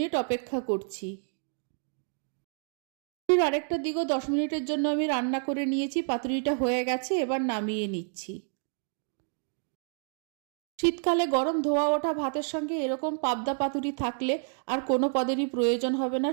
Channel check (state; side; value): silent; left; 58 dB below the other